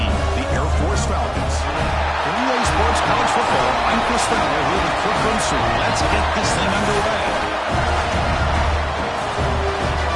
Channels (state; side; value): identical; both; correlation 1.00